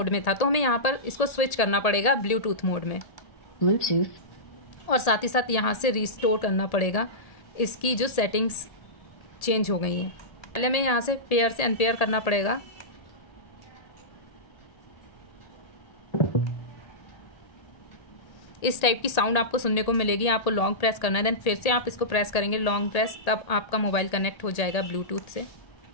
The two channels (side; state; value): right; late; 1.8 ms